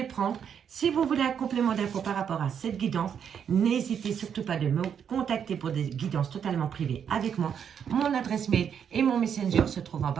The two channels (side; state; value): left; quieter; 7.9 dB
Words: prendre. Si vous voulez un complément d'infos par rapport à cette guidance, n'hésitez surtout pas de me contacter pour des guidances totalement privées avec moi. Mon adresse mail et mon messenger se trouvent en